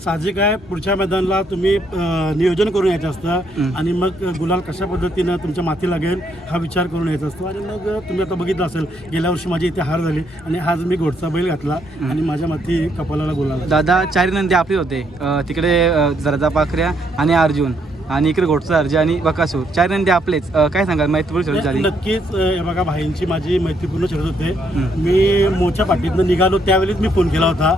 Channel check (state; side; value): normal; both; correlation 0.72